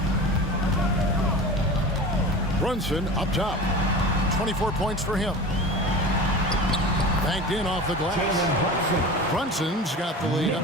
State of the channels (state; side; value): normal; both; correlation 0.33